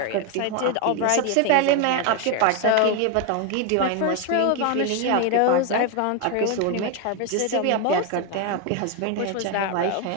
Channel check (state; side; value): different; both; correlation 0.01